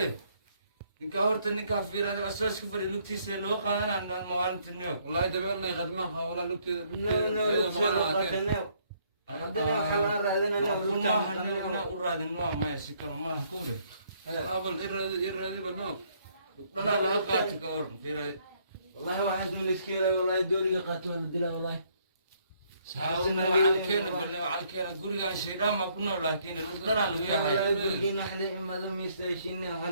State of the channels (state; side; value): inverted; both; correlation -0.68